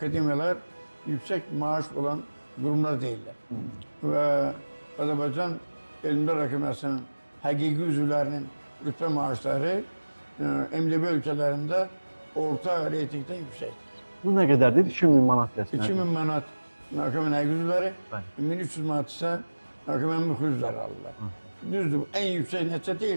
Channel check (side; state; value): both; inverted; correlation -1.00